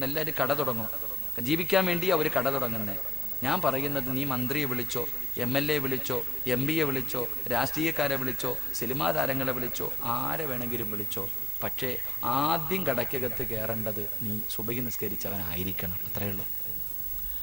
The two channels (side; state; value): both; normal; correlation 0.80